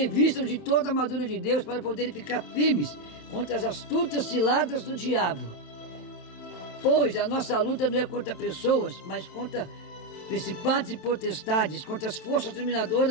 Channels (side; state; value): right; late; 27 ms